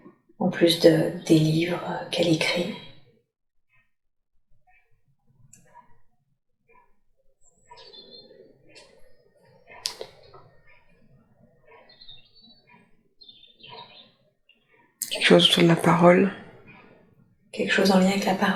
En plus des livres qu'elle écrit. Quelque chose autour de la parole. Quelque chose en lien avec la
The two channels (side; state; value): both; identical; correlation 1.00